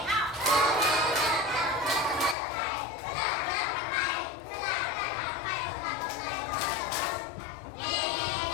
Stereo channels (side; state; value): right; drops out; at 2.4 s